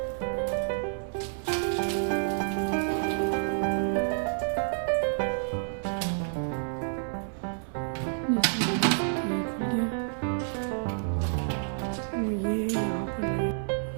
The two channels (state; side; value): silent; left; 58 dB below the other